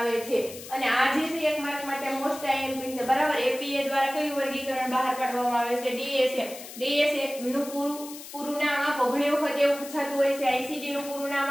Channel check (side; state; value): left; noise; hiss, 14 dB below the sound